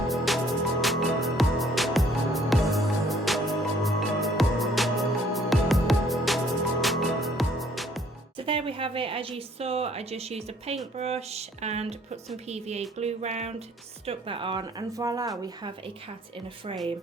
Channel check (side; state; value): both; normal; correlation 0.61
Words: There we have it. As you saw, I just used a paintbrush and put some PVA glue round, stuck that on, and voila, we have a cat in a frame.